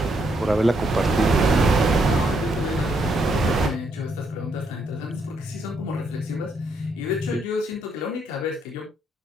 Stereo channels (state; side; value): normal; both; correlation 0.75